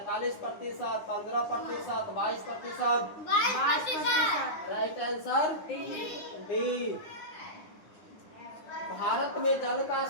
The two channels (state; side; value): late; right; 9.7 ms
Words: 15%, 22%। 22%। Right answer D. भारत में जल का